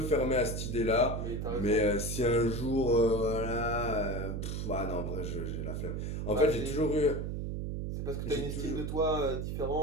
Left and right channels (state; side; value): noise; right; hum, 3 dB below the sound